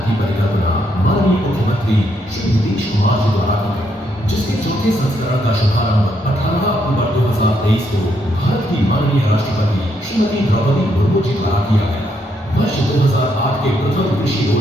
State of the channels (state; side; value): normal; both; correlation 0.75